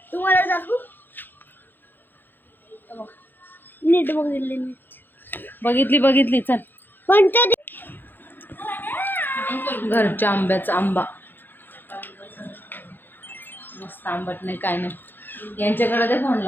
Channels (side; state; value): right; late; 0.093 ms